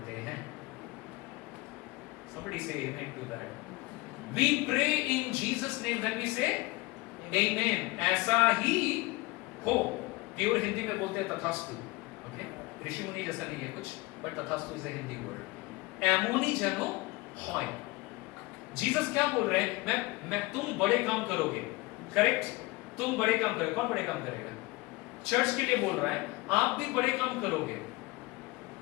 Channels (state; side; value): quieter; right; 22.5 dB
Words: हैं। Somebody say amen to that. We pray in Jesus' name, then we say amen. ऐसा ही हो। प्योर हिंदी में बोलते हैं तथास्तु। ओके, ऋषि मुनि जैसा नहीं है कुछ, बट तथास्तु इज हिंदी वर्ड। एमोनी जनो हॉय। जीसस क्या बोल रहे हैं? मैं तुम बड़े काम करोगे, करेक्ट? तुम बड़े काम करोगे। कौन बड़े काम करेगा? चर्च के लिए बोल रहा है, आप भी बड़े काम करोगे।